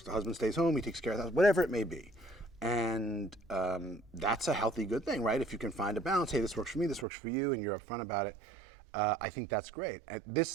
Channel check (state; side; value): drops out; left; at 7.1 s